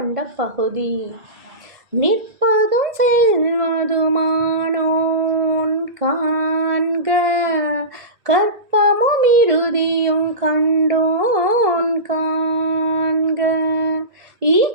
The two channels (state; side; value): late; left; 1.7 ms